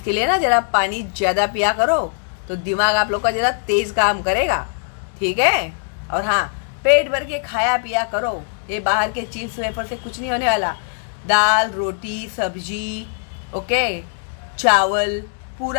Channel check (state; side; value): silent; right; digital silence